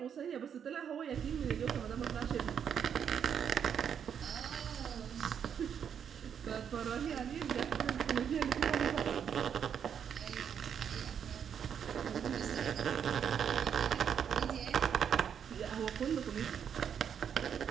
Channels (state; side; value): quieter; left; 8.0 dB